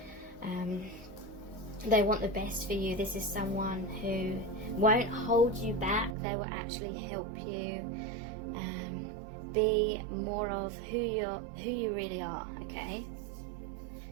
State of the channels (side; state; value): left; drops out; at 6.2 s